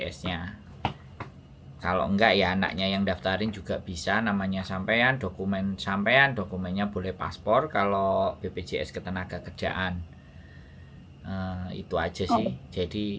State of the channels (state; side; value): identical; both; correlation 1.00